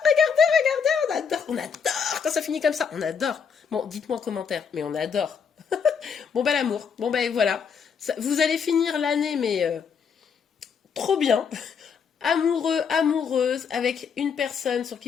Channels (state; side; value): quieter; right; 6.5 dB